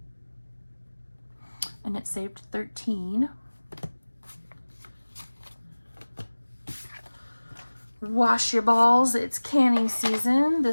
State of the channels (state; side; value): inverted; both; correlation -1.00